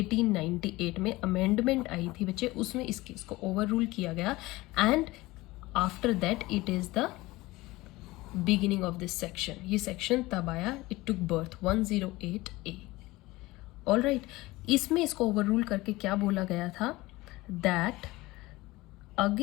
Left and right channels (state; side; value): quieter; right; 20.0 dB